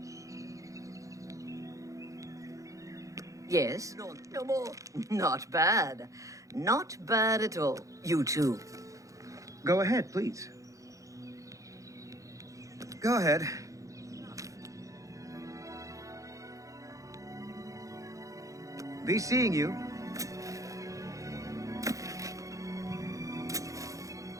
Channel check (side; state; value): left; late; 0.16 ms